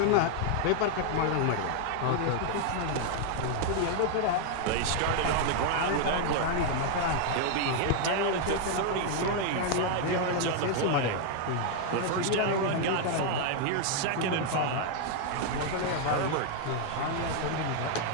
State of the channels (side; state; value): both; different; correlation 0.00